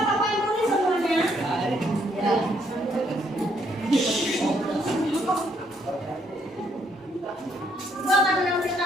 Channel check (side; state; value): both; normal; correlation 0.71